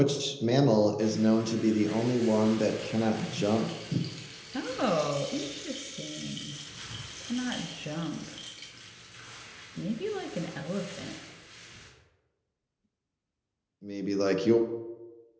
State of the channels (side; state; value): both; identical; correlation 1.00